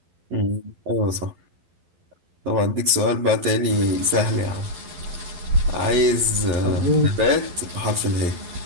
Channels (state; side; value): late; left; 12 ms